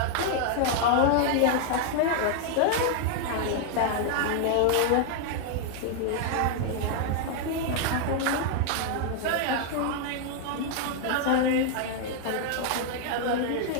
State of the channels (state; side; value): different; both; correlation 0.00